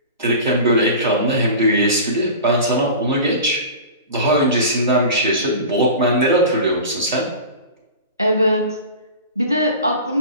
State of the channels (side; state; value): both; inverted; correlation -0.34